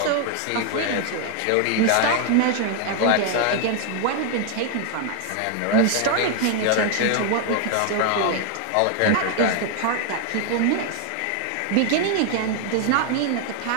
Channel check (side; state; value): both; different; correlation 0.01